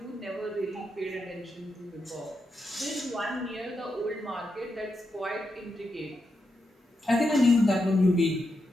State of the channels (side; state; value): both; normal; correlation 0.85